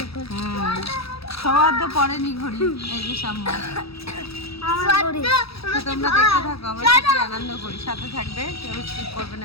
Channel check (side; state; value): right; late; 0.77 ms